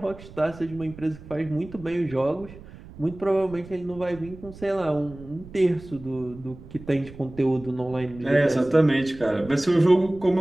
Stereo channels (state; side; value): noise; right; rumble, 18 dB below the sound